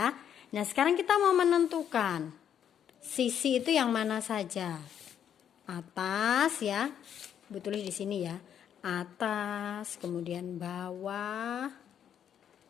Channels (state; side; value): quieter; right; 9.1 dB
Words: Nah sekarang kita mau menentukan sisi itu yang mana saja. Atas ya, betul di sini ya. Atas, kemudian bawah.